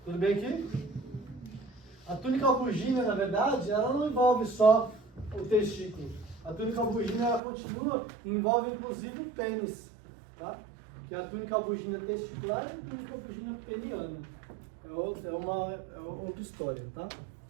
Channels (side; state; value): left; drops out; at 7.4 s